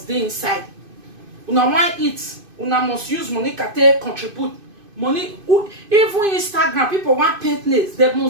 be inside. Una want eat, una must use Monica to contribute. Money, even Instagram, people want paint nails, they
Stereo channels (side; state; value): left; late; 2.5 ms